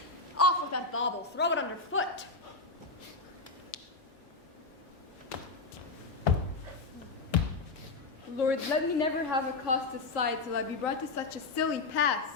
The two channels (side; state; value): right; quieter; 3.7 dB